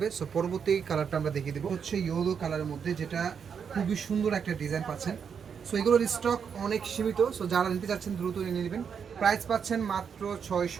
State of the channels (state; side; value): quieter; left; 6.9 dB